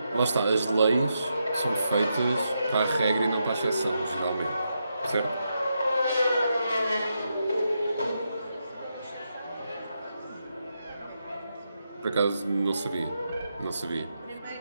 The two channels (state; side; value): inverted; both; correlation -0.84